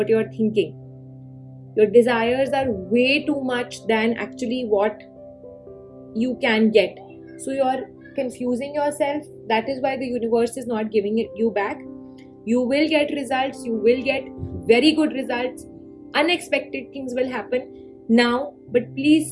you're thinking. Your desires are way too much than actually what you can get. So you're confusing yourself. That is why the universe is not giving it you back. You will get results. You will get very good results. Unexpected things will happen now, but please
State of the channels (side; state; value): both; identical; correlation 1.00